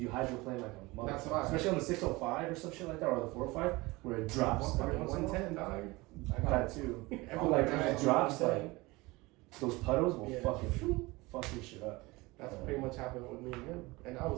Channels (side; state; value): left; quieter; 22.4 dB